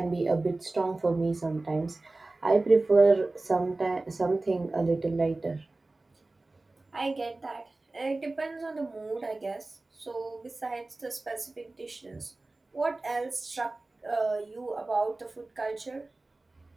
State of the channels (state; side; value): quieter; left; 3.1 dB